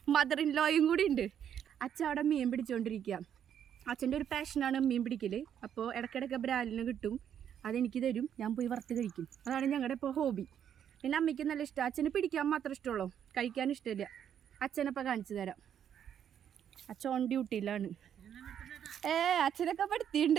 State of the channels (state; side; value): quieter; left; 9.1 dB